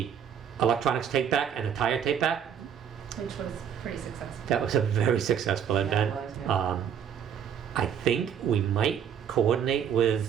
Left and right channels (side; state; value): left; quieter; 8.3 dB